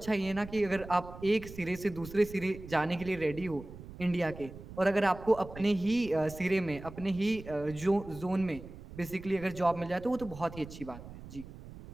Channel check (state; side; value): noise; right; rumble, 14 dB below the sound